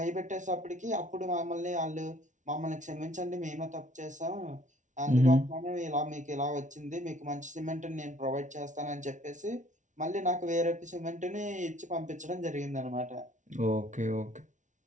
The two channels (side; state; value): left; late; 0.36 ms